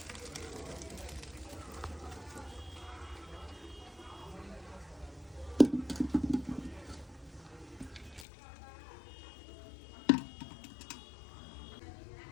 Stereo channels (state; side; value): drops out; right; at 8.2 s